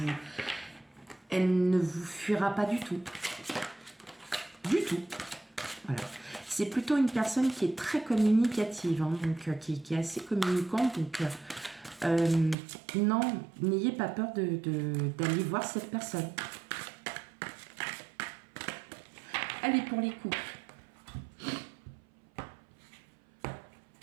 elle ne vous fuira pas du tout. Du tout. Voilà. C'est plutôt une personne qui est très communicative, hein, donc qui est assez communicante, donc non, n'ayez pas peur d'aller voir cette personne. Allez, pour les couples.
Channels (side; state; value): left; drops out; at 12.6 s